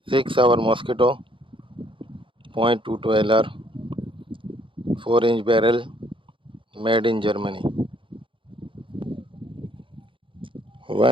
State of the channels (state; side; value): late; left; 0.25 ms